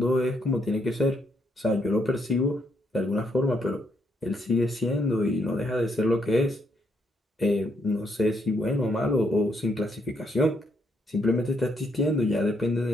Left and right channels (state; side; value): normal; both; correlation 0.75